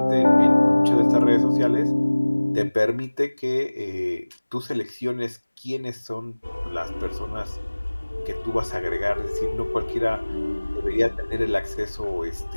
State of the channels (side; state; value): both; inverted; correlation -1.00